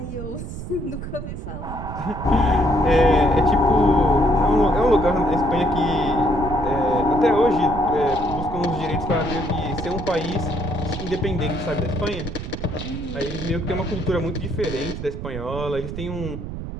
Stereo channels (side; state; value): right; noise; rumble, 7 dB below the sound